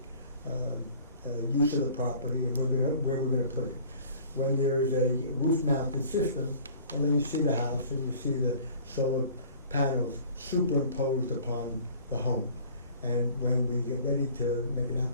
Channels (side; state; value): both; inverted; correlation -0.49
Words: use of the property and where we're gonna put it. When there is a roof-mounted system, well, then you see the house and you see the solar panels superimposed upon the home. And when we get ready to make an